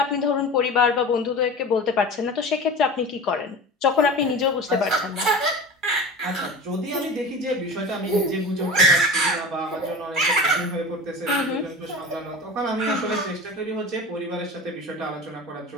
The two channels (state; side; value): normal; both; correlation 0.33